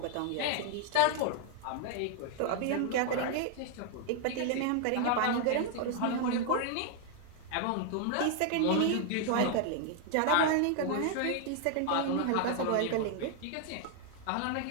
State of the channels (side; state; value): both; different; correlation 0.00